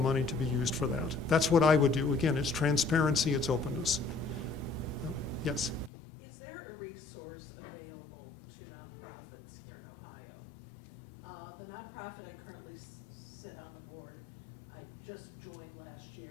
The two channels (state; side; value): drops out; right; at 5.9 s